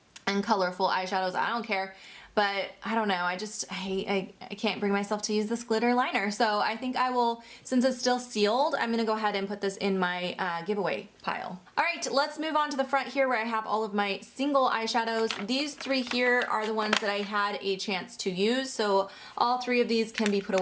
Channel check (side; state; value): both; identical; correlation 1.00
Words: and colorful eyeshadows, I don't care. But I don't know, I can't bring myself to use this glitter liner. So I think I will, since it's still sealed, I'm gonna go ahead and put this in my giveaway pile. All right, let's move on to the front here where I have all of my single eyeshadows. These three here are the ones that I had a chance to use. So all three of these can be put